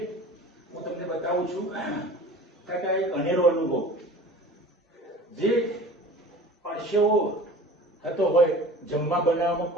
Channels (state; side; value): normal; both; correlation 0.41